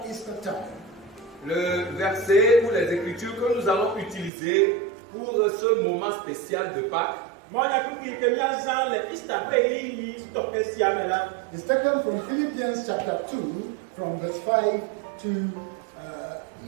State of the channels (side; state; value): left; drops out; at 4.3 s